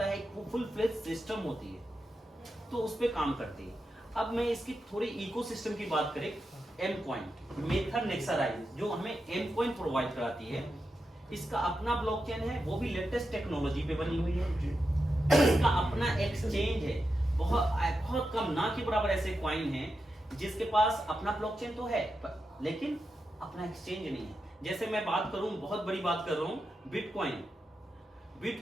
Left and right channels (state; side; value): normal; both; correlation 0.88